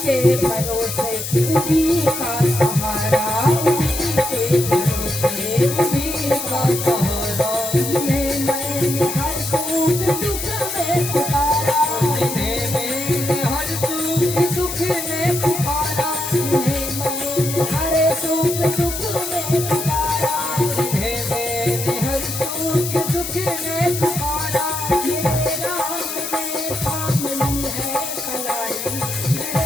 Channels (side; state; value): left; noise; hiss, 5 dB below the sound